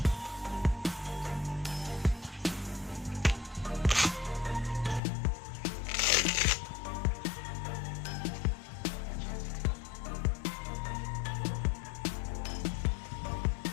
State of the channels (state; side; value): drops out; right; at 5.0 s